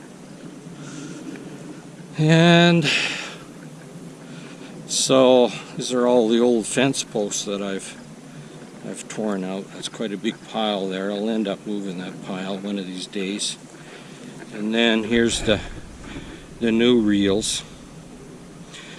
And so these are all the old fence posts that I've torn out. That's quite a big pile there. I'll end up moving that pile one of these days. And then here's the new reels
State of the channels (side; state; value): both; identical; correlation 1.00